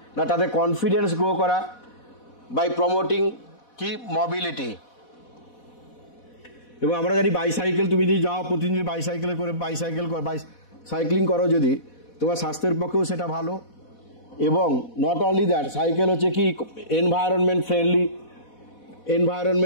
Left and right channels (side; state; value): right; late; 4.1 ms